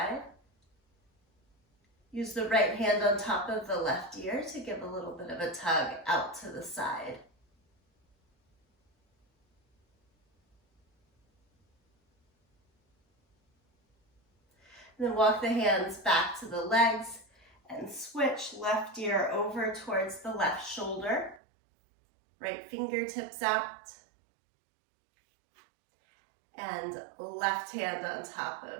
Use the right hand on top of the left ear to give a little bit of a tug out to the side. And then walk the hands back to the legs and switch left ear over towards the left shoulder. Right fingertips out. And left hand on top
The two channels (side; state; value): left; drops out; at 21.4 s